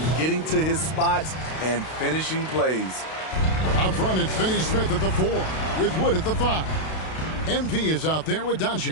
getting to his spots, and finishing plays. Out front, it's Finney Smith at the 4, with Wood at the 5. MP is out there with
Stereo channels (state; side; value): late; right; 32 ms